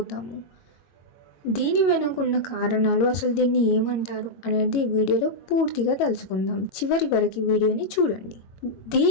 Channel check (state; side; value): late; right; 22 ms